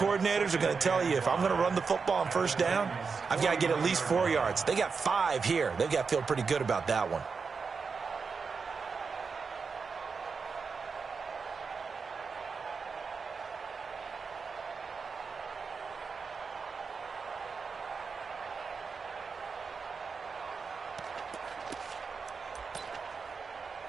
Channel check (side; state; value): left; quieter; 5.2 dB